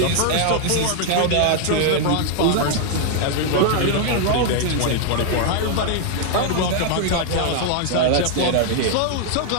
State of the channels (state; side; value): different; both; correlation 0.00